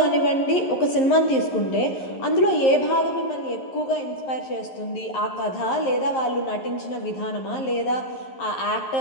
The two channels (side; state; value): right; late; 11 ms